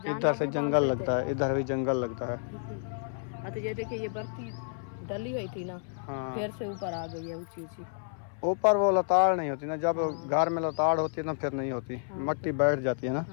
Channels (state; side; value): silent; right; 55 dB below the other